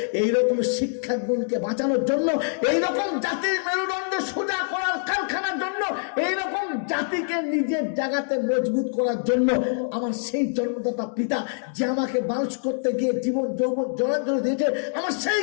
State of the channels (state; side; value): silent; right; digital silence